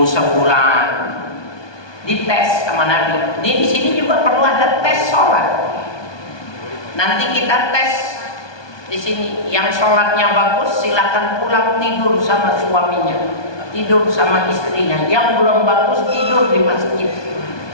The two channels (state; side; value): late; right; 1.2 ms